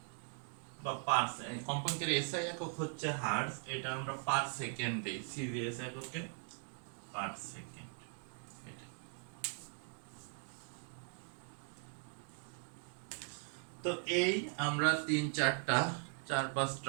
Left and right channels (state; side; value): silent; left; 51 dB below the other